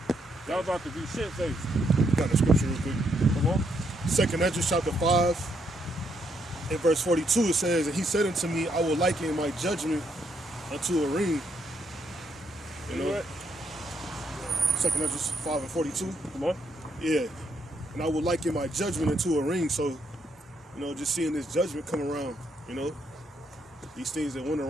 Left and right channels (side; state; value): both; normal; correlation 0.75